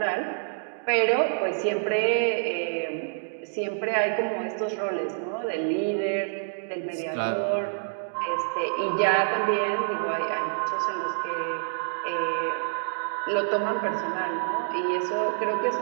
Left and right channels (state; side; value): silent; left; digital silence